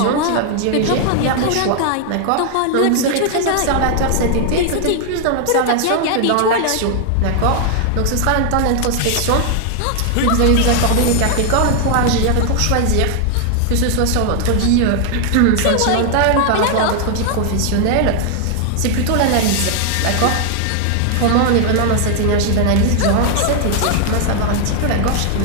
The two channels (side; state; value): both; different; correlation 0.00